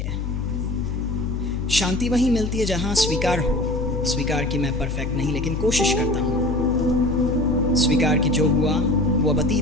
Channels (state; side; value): noise; left; hum, 3 dB below the sound